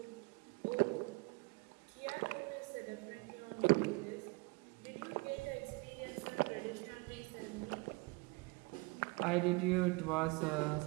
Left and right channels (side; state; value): left; quieter; 27.6 dB